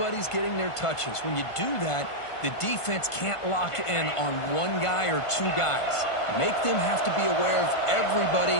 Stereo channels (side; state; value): right; late; 1.5 ms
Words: getting their touches. When you do that, the defense can't lock in on one guy or two guys. Make them have to be aware of everybody,